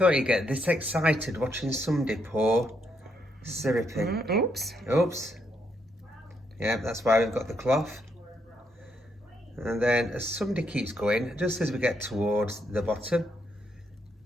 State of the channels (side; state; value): both; normal; correlation 0.77